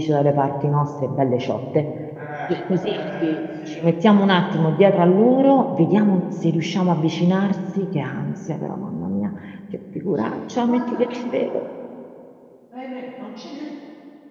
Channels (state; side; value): identical; both; correlation 1.00